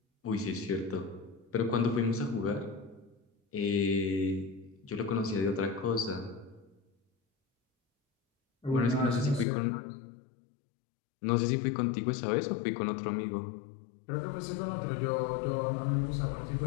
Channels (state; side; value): drops out; right; at 9.5 s